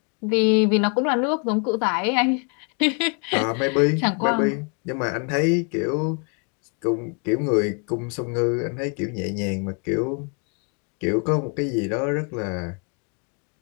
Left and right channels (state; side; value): quieter; right; 37.8 dB